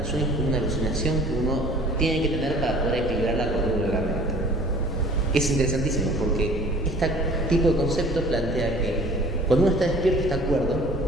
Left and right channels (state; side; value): normal; both; correlation 0.49